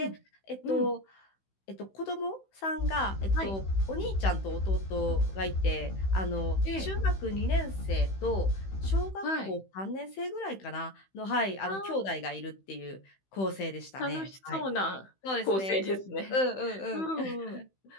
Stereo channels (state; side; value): late; right; 16 ms